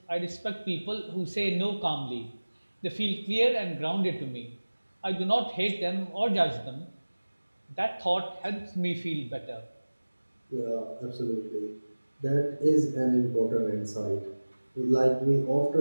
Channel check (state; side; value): inverted; both; correlation -1.00